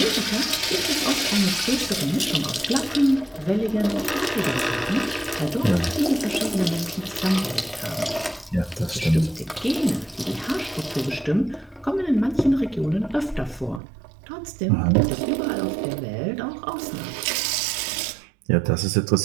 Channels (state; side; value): drops out; left; at 13.8 s